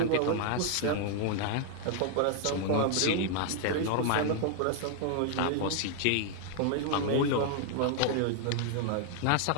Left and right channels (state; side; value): different; both; correlation 0.00